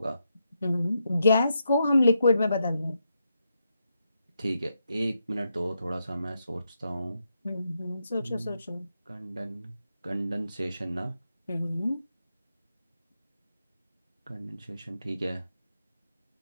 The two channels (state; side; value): inverted; both; correlation -0.84